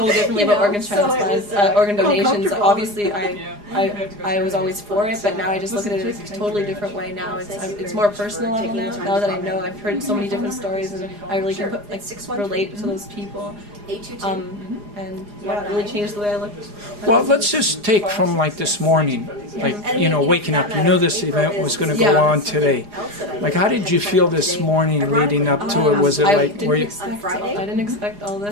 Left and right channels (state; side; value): late; left; 4.9 ms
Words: differently about organ transplants, organ donations. Obviously, I was always for it, but now I just look at it in a totally different way. Now it's more personal level now. Now that I know, I've heard so many different stories, and I really can relate to those people. And yeah, it really changed the way I look. Well, let's just take from like this morning, like, you know, waking up. You knew this event was going to go on today. Like, how did you feel this morning leading up to it? Was it like, were you? I didn't expect all